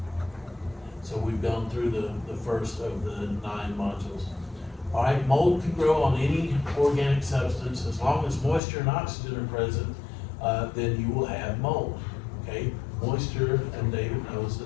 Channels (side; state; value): right; drops out; at 8.6 s